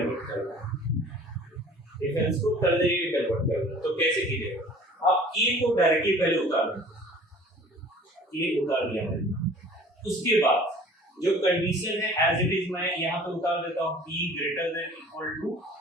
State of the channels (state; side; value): normal; both; correlation 0.48